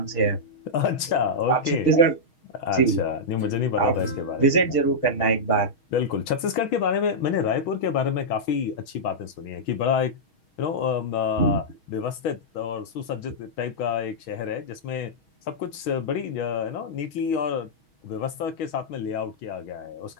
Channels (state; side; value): late; right; 6.3 ms